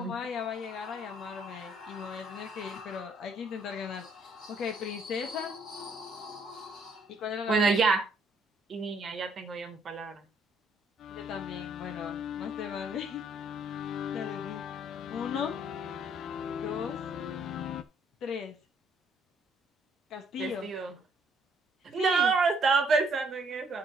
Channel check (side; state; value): both; normal; correlation 0.65